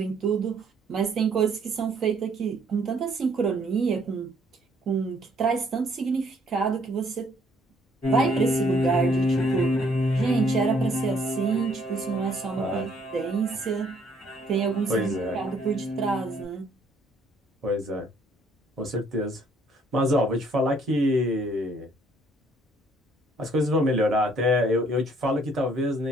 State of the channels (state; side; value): normal; both; correlation 0.64